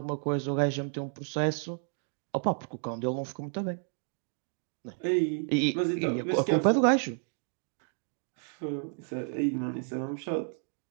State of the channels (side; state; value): left; silent; 56 dB below the other